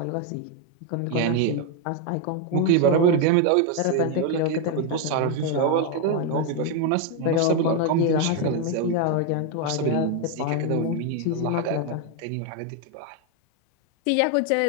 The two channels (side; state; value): both; different; correlation 0.01